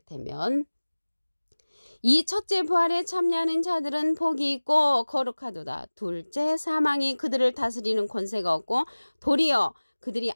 되면 이 첫째 부활에 참여하는 자들은 복이 있고 거룩하도다. 둘째 사망이 그들을 다스리는 권세가 없고 도리어 그들이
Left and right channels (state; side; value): inverted; both; correlation -1.00